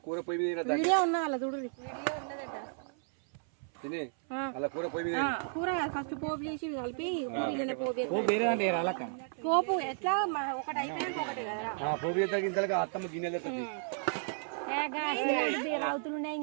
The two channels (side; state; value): left; silent; 56 dB below the other